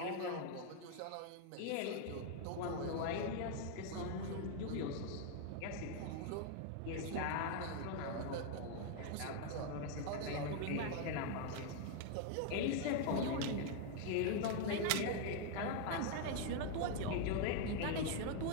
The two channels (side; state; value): both; different; correlation 0.00